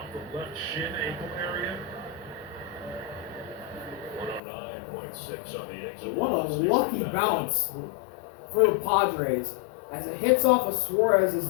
the left shin ankle area. 109.6 on the exit. What a lucky bounce for the Padres as it hits off of Suarez's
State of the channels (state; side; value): drops out; right; at 4.4 s